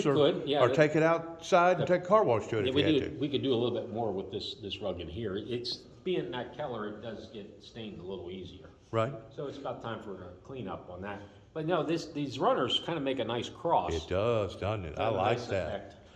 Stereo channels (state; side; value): identical; both; correlation 1.00